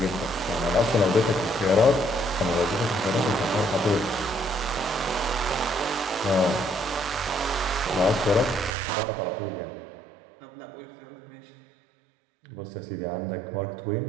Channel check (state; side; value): drops out; left; at 8.8 s